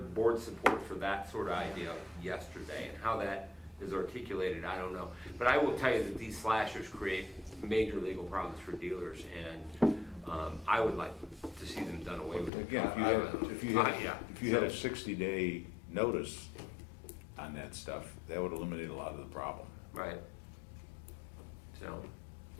board support for that sort of idea yesterday, and how that is articulated, I don't know. But I will tell you that these slashers create major legal problems for dealers, and I would like to see them done away with. Again, if you had a 60-day notice on that stuff, that would eliminate a lot of the problem. Right.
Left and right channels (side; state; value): right; drops out; at 12.5 s